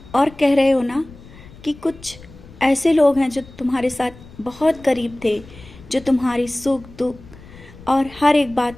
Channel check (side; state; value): left; noise; rumble, 20 dB below the sound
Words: और कह रहे हो ना कि कुछ ऐसे लोग हैं जो तुम्हारे साथ बहुत करीब थे, जो तुम्हारी सुख दुख और हर एक बात